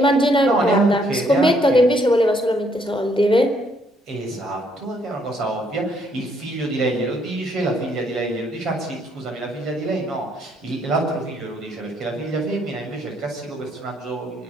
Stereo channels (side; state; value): both; normal; correlation 0.69